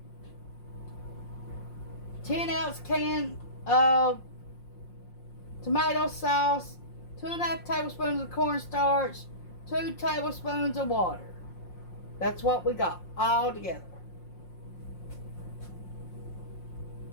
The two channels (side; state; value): right; late; 5.6 ms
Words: 10-ounce can of tomato sauce, 2.5 tablespoons of cornstarch, 2 tablespoons of water. That's what we got all together.